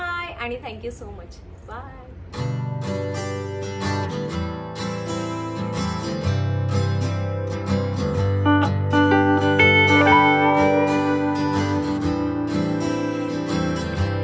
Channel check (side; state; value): both; identical; correlation 1.00